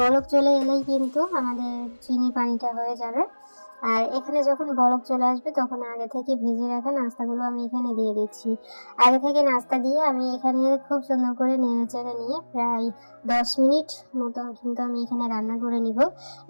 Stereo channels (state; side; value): inverted; both; correlation -1.00